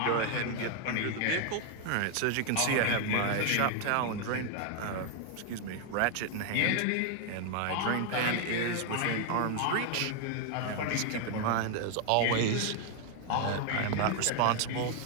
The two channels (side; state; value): both; different; correlation 0.00